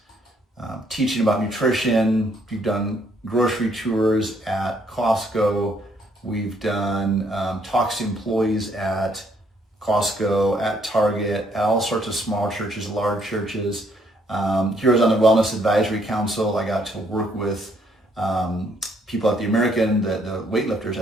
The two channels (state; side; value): normal; both; correlation 0.69